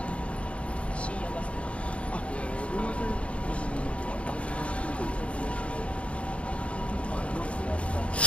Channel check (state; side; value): late; right; 0.061 ms